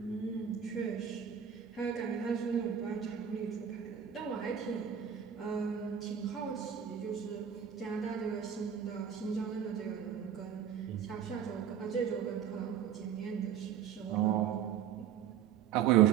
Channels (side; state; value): left; quieter; 8.6 dB